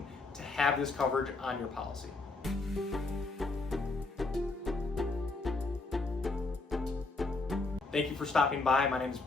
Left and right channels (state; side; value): quieter; right; 3.5 dB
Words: to have this coverage on your policy. Thank you for stopping by. My name is